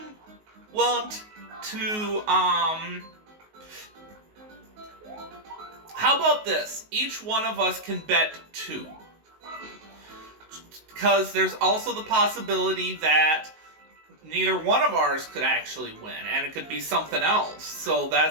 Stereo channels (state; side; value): late; left; 19 ms